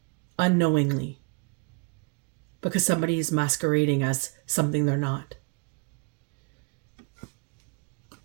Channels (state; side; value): quieter; left; 31.6 dB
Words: because somebody is masquerading as something they're not.